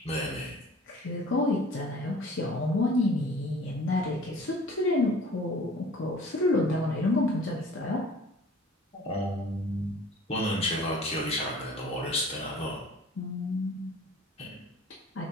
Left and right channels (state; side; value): normal; both; correlation 0.47